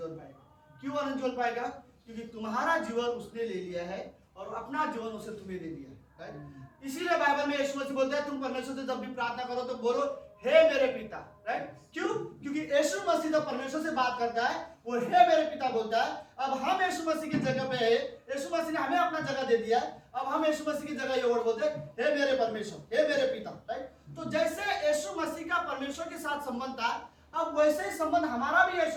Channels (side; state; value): both; identical; correlation 1.00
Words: पाएगा। क्यों आनंद जोल पाएगा? क्योंकि तुम्हारा जीवन उसने ले लिया है और अपना जीवन उसे तुम्हें दे दिया है, राइट। इसीलिए बाइबल में यीशु मसीह बोलता है, तुम परमेश्वर से जब भी प्रार्थना करो तो बोलो, हे मेरे पिता, राइट। क्यों? क्योंकि यीशु मसीह जब परमेश्वर से बात करता है, वो हे मेरे पिता बोलता है। अब हम यीशु मसीह की जगह पे है, यीशु मसीह ने हमें अपना जगह दे दिया, अब हम यीशु मसीह की जगह ये वर्ड बोलते हैं, हे मेरे परमेश्वर, हे मेरे पिता, राइट। तो जैसे यीशु मसीह का परमेश्वर के साथ संबंध था, अब वैसे ही संबंध हमारा भी